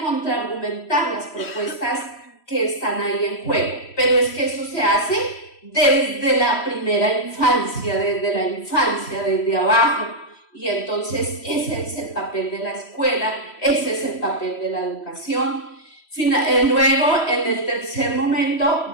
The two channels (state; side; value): late; right; 3.0 ms